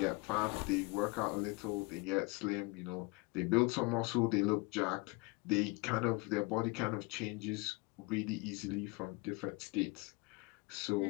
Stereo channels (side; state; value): right; quieter; 26.8 dB